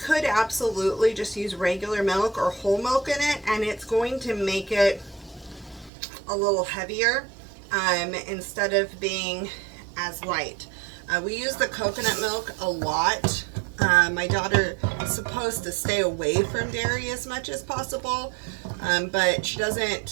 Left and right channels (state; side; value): drops out; left; at 5.9 s